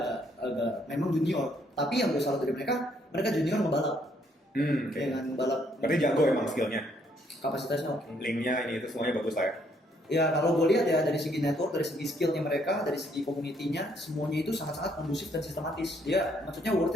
agak memang junior. Tapi yang gue salut dari mereka junior ngebalap. Dengan balap. Berarti jago emang skillnya. Kapasitasnya oke. Linknya ini itu semuanya bagus lah ya. Ya kalau gue lihat ya dari segi network, dari segi skillnya mereka, dari segi community-nya, semuanya itu sangat-sangat kondusif dan sistematis. Dia maksudnya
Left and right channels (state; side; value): normal; both; correlation 0.69